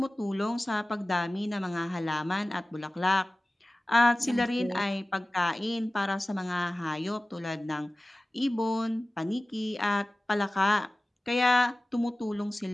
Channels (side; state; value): both; normal; correlation 0.97